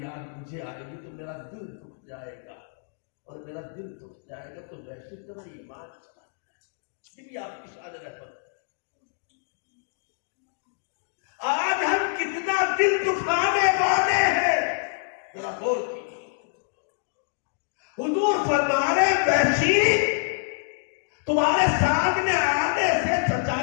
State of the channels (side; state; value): right; silent; digital silence